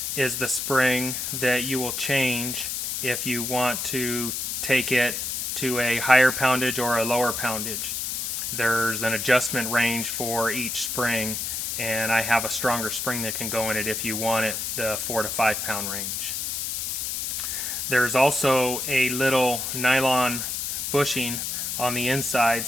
is the spring that you will change if you want to take it to a higher poundage or a lower poundage. There's an adjustment range for each spring, and I have a stronger spring that can go in it if you want it the 4 to 5 pound range. There's also a little nylon bushing on the inside.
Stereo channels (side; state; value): left; noise; hiss, 2 dB below the sound